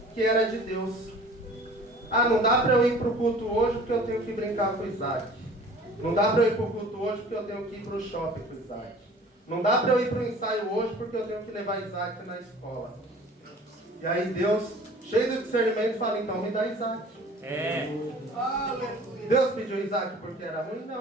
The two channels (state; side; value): normal; both; correlation 0.47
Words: que era de Deus. Não dá para eu ir para o culto hoje porque eu tenho que brincar com Isaac. Não dá para eu ir para o culto hoje porque eu tenho que ir para o shopping com Isaac. Não dá para eu ir para o ensaio hoje porque eu tenho que levar Isaac na escola. E aí Deus, cheio de discernimento, fala: então me dá Isaac. Deus pediu Isaac porque era ruim?